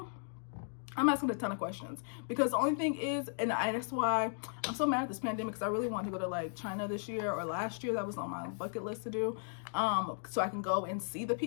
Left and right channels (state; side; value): silent; right; digital silence